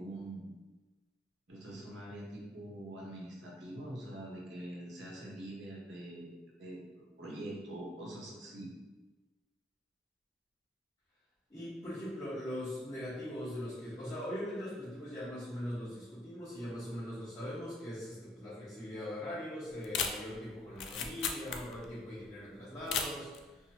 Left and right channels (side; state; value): both; normal; correlation 0.64